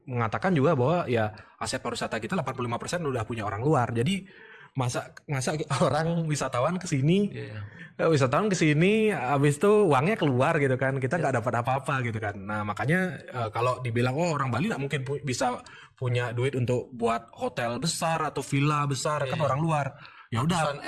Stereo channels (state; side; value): identical; both; correlation 1.00